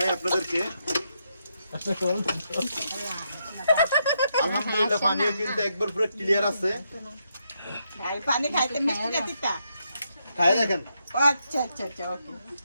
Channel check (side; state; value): both; inverted; correlation -0.80